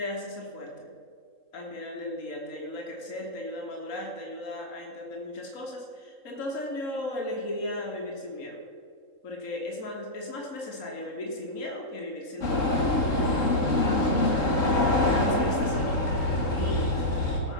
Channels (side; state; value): right; late; 3.8 ms